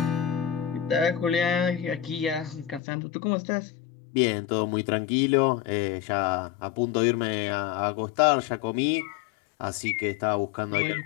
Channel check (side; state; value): right; drops out; at 2.8 s